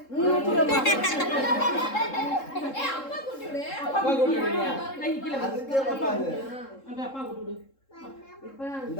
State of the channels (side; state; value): right; late; 3.7 ms